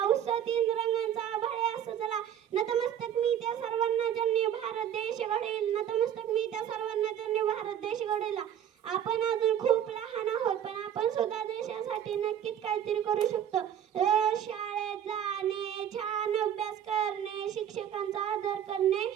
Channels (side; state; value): left; quieter; 9.8 dB